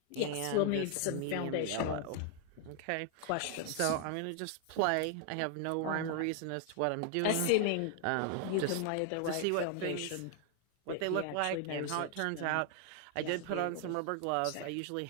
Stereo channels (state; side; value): different; both; correlation 0.00